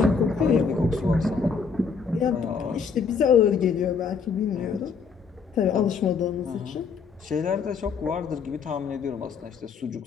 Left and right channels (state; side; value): quieter; right; 5.6 dB